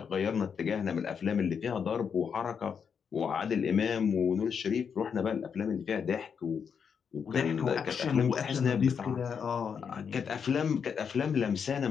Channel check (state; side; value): quieter; right; 6.8 dB